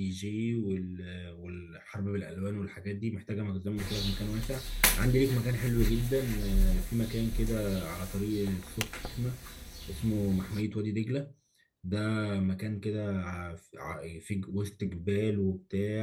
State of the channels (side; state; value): both; identical; correlation 1.00